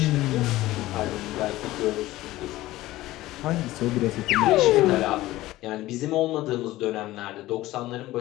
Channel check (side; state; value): right; quieter; 16.9 dB